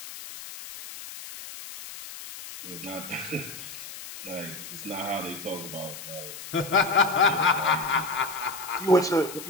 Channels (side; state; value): left; noise; hiss, 12 dB below the sound